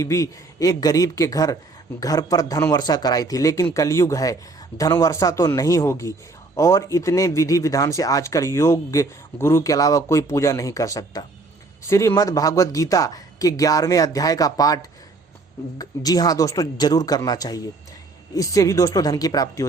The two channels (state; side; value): quieter; left; 3.4 dB